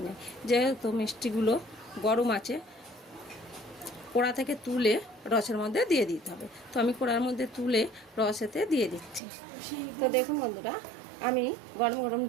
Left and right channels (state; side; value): drops out; left; at 9.2 s